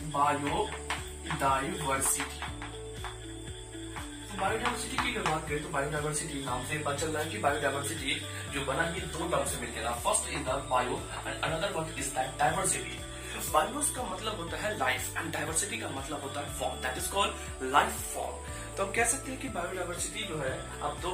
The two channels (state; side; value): identical; both; correlation 1.00